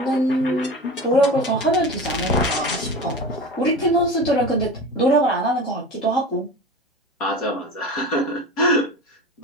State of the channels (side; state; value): both; normal; correlation 0.31